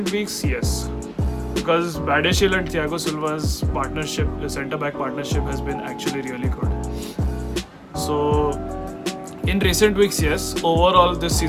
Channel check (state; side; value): identical; both; correlation 1.00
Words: weeks, yes, because Badiashile and Thiago Silva's partnership, the centre-back partnership, has been actually really good. So, in recent weeks, yes. Overall, this